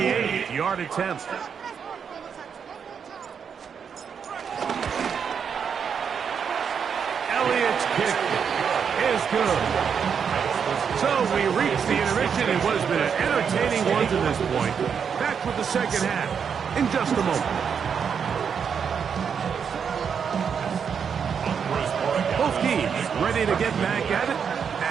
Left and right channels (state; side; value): quieter; left; 6.9 dB